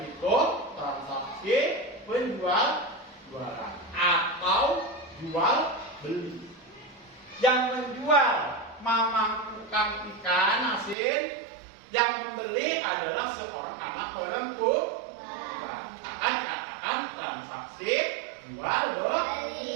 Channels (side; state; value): left; drops out; at 11.0 s